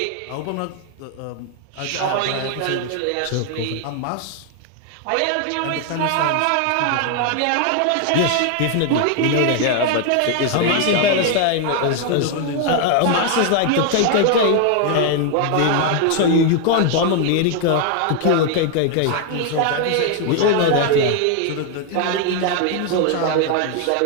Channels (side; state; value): both; different; correlation 0.01